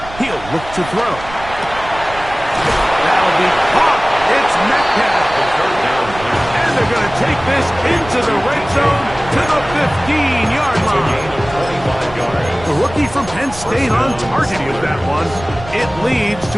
He'll look to throw. That'll be caught. It's Metcalf. And they're going to take this into the red zone to the 15-yard line. The rookie from Penn State on target with that one. It leads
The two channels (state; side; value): noise; right; rumble, 15 dB below the sound